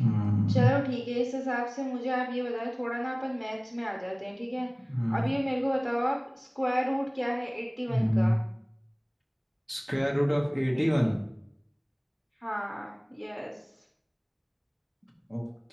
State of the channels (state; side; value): identical; both; correlation 1.00